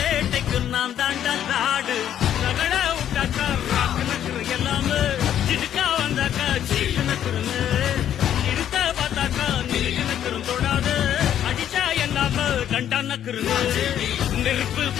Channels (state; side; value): quieter; right; 10.4 dB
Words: நான் தாண்டா நாடு நகட விட்டாக்கா ராக்கு நக்குரு எல்லாமே சிடுக்கா வந்தாக்கா சீக்கு நக்குருங்க இருத்த பார்த்தாக்கா நிலுக்கு நக்குரும் தொடாது அடிச்சா எல்லாம கண்டா நக்குருங்க நெருப்பு